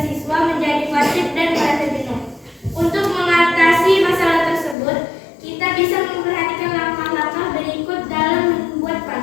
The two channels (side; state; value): right; drops out; at 4.8 s